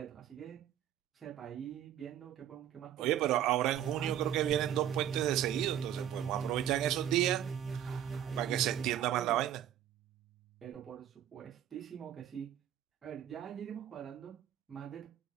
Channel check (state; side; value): quieter; left; 10.8 dB